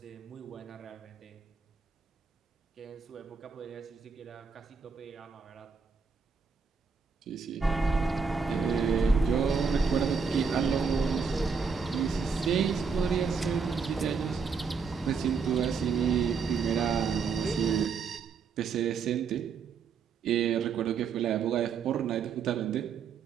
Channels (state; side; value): quieter; left; 5.5 dB